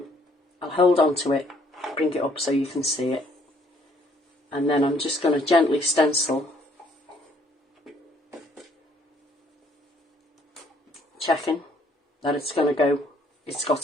I'll hold on to it, bring it up so you can see it, and then I'm just going to gently stencil, checking that it's going to go, it's got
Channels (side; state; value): both; normal; correlation 0.64